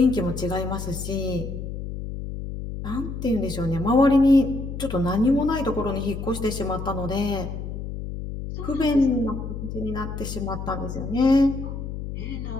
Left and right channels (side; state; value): left; noise; hum, 7 dB below the sound